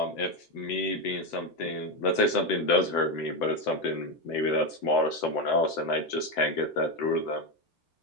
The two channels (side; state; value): right; late; 7.8 ms